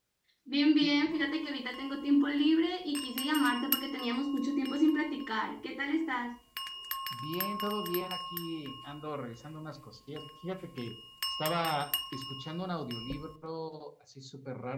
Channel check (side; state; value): both; identical; correlation 1.00